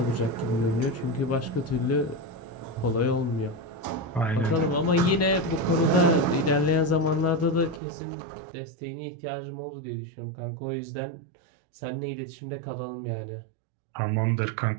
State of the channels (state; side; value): drops out; left; at 7.8 s